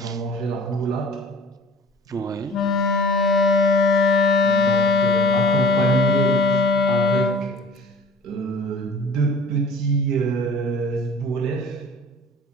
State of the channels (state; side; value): normal; both; correlation 0.45